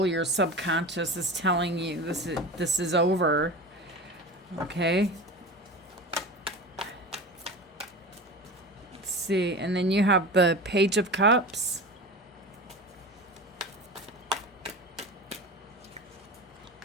your subconscious is telling you this is over. Okay? Let's see. And then you have the Page of Cups.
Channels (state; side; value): normal; both; correlation 0.31